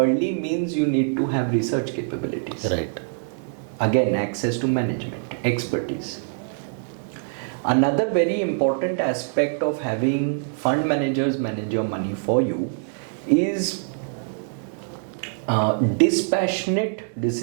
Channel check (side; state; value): left; silent; 62 dB below the other